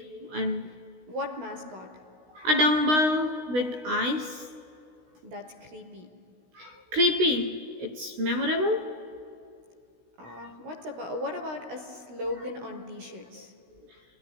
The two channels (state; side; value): late; left; 16 ms